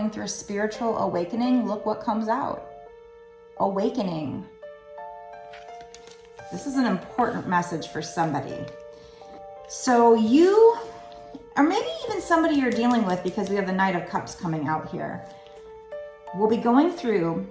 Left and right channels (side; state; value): both; identical; correlation 1.00